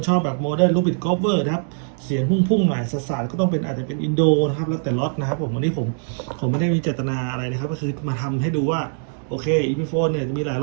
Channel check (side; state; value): left; silent; 64 dB below the other